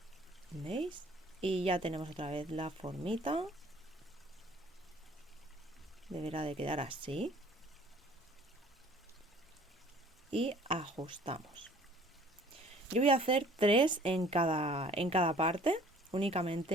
¿Veis? Y ya tenemos otra vez la formita. Deberá de quedar así. Y ajustamos. Yo voy a hacer 3 en cada parte,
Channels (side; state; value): both; normal; correlation 0.53